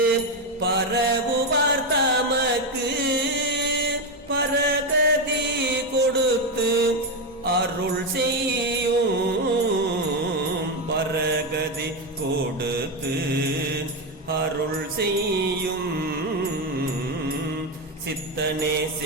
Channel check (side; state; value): both; normal; correlation 0.10